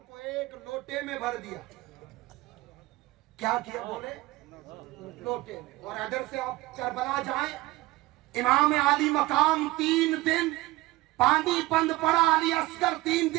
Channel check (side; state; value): left; quieter; 19.0 dB